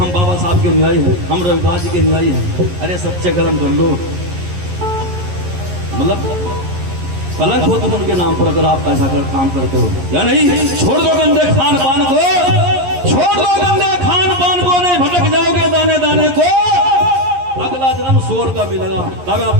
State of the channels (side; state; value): left; late; 11 ms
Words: बाबा साहब के अनुयायी हैं, हम रविदास जी के अनुयायी हैं। अरे सच्चे कर्म कर लो, मतलब कलंक हो तुम उनके नाम पर अगर आप ऐसा काम करते हो या नहीं। छोड़ दो गंदे खान पान को, छोड़ दो गंदे खान पान को, नहीं भटक जाओगे दाने दाने को। अगला जन्म स्वर्ग का मिलेगा, दावा